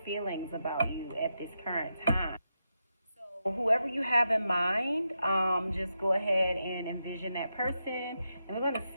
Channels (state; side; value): inverted; both; correlation -0.86